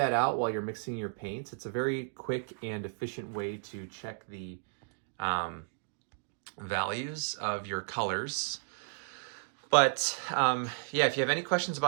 out while you're mixing your paints. It's a very quick and efficient way to check the values of your colors. But yeah, if you have any questions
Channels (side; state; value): left; silent; digital silence